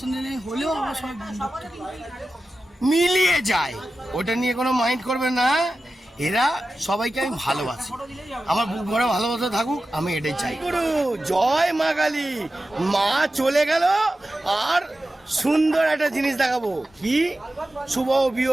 শুনে নেই হলেও আমরা সবাই বন্ধুত্ব মিলিয়ে যায়, ওটা নিয়ে কোনো মাইন্ড করবেন না। এরা সবাইকে আমি ভালোবাসি, আমার বুক ভরে ভালোবাসা থাকুক, আমি এটাই চাই। গুরু জয় মা কালী। মা চলে গেল আর সুন্দর একটা জিনিস দেখাবো। কি শুভ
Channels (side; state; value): both; normal; correlation 0.93